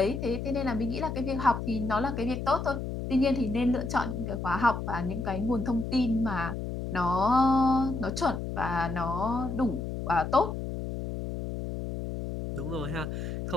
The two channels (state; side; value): noise; left; hum, 5 dB below the sound